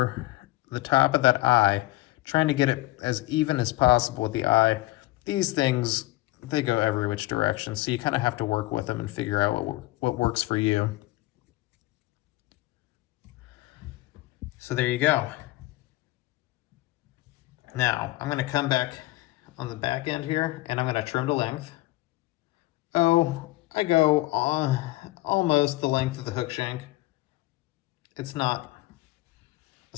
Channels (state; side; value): quieter; right; 18.7 dB